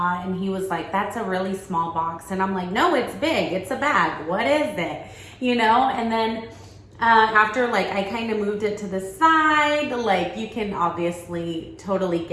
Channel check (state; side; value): identical; both; correlation 1.00